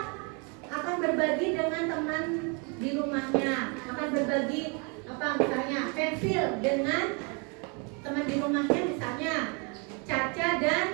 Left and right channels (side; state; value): left; quieter; 34.0 dB